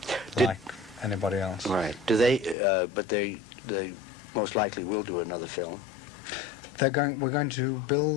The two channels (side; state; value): right; drops out; at 2.6 s